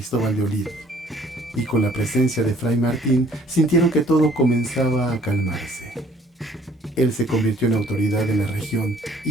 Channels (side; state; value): both; normal; correlation 0.58